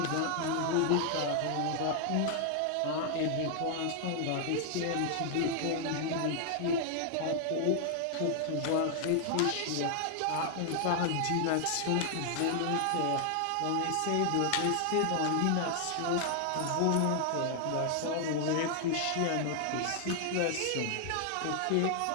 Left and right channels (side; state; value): both; different; correlation 0.00